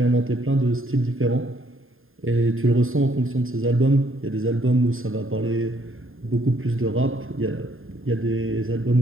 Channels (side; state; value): left; late; 0.60 ms